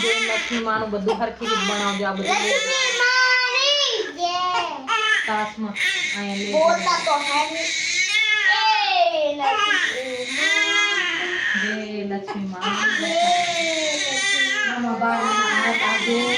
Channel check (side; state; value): both; identical; correlation 1.00